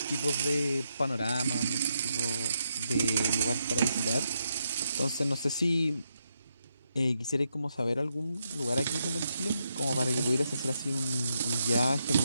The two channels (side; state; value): both; inverted; correlation -0.81